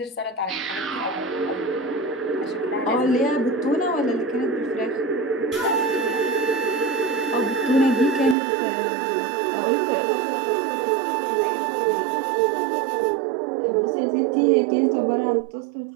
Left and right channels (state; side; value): drops out; left; at 8.3 s